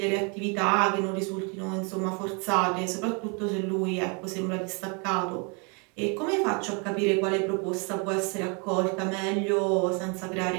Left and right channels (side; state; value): left; quieter; 34.3 dB